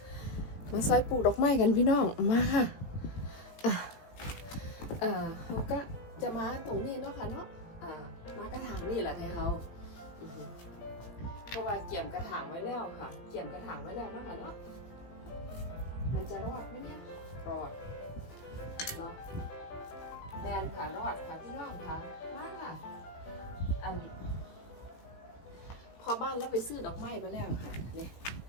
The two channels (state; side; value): late; right; 17 ms